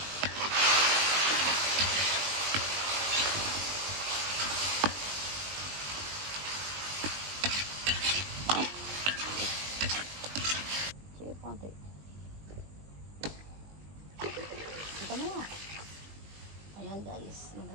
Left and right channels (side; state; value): left; late; 20 ms